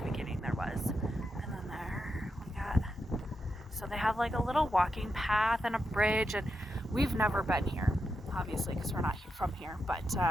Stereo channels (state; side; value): normal; both; correlation 0.86